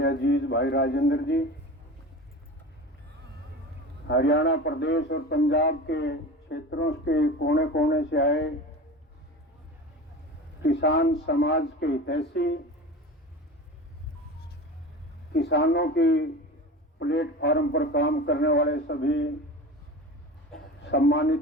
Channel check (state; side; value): normal; both; correlation 0.33